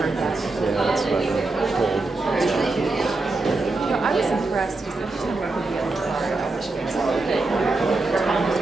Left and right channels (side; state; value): left; quieter; 3.3 dB